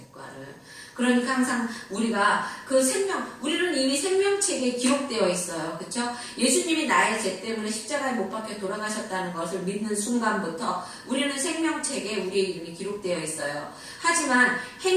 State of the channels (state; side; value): identical; both; correlation 1.00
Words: 그러니까 항상 우리가 우리는 이미 생명책에 기록되어 있어요. 그쵸? 예수님이 나의 죄 때문에 십자가에 못 박혀 돌아가셨다는 것을 믿는 순간부터 우리는 생명책에 우리의 이름이 기록되어 있어요. 하지만